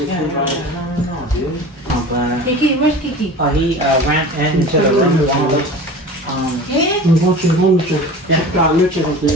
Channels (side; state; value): both; normal; correlation 0.36